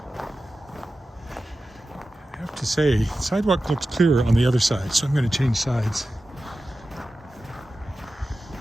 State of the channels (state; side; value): normal; both; correlation 0.94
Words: I have to say, the sidewalk looks clearer on the other side, so I'm going to change sides.